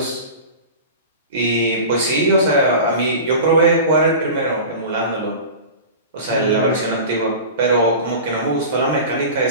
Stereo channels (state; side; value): inverted; both; correlation -0.34